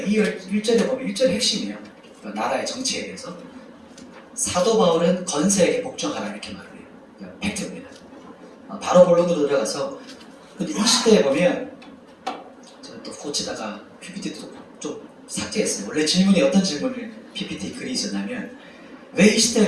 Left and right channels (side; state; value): both; identical; correlation 1.00